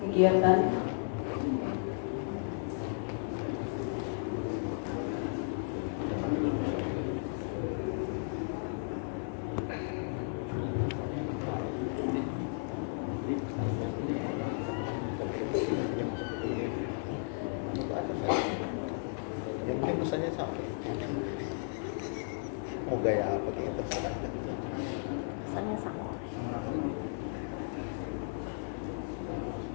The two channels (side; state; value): right; silent; 55 dB below the other